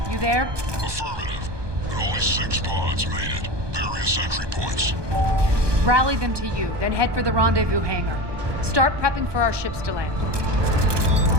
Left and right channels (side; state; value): left; late; 1.2 ms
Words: you there? Affirmative, but only 6 pods made it. Various entry points. Rally them to you, then head for the rendezvous hangar. Start prepping for our ships to land.